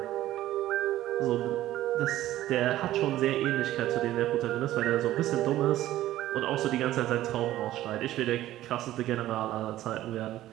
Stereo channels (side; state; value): left; quieter; 14.3 dB